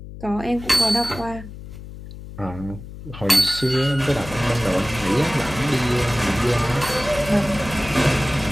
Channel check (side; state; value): left; noise; hum, 13 dB below the sound